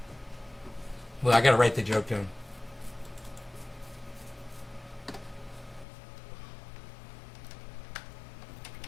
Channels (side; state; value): right; drops out; at 5.9 s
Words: Well, I gotta write the joke down.